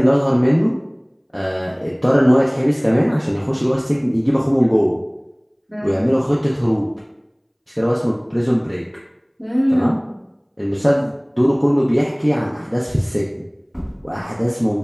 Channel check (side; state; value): both; identical; correlation 1.00